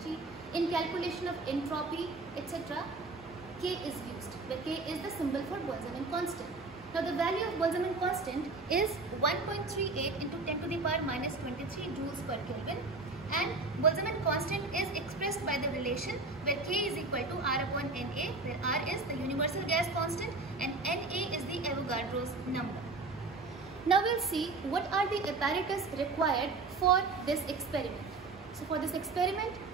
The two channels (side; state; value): left; quieter; 3.6 dB